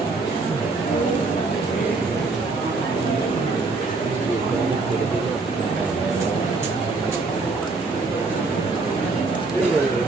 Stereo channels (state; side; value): quieter; left; 3.8 dB